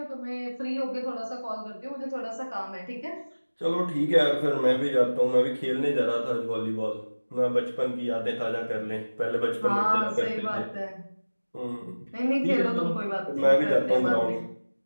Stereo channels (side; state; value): both; inverted; correlation -1.00